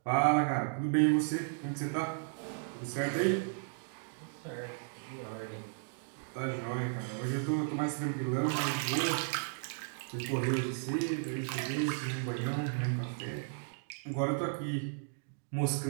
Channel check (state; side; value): silent; left; digital silence